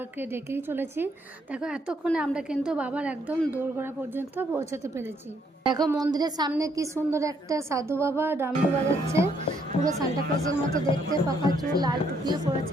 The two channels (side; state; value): both; normal; correlation 0.70